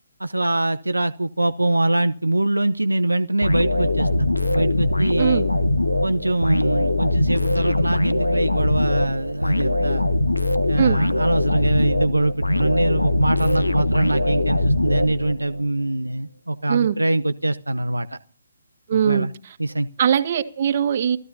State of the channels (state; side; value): inverted; both; correlation -0.90